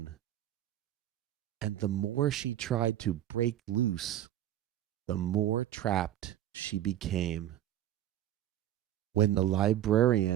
And the more she tried to break loose, the more trapped she became. When the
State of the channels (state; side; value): quieter; left; 12.4 dB